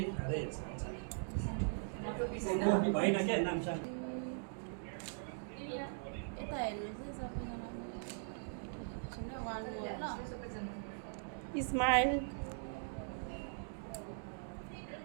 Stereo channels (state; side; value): silent; left; digital silence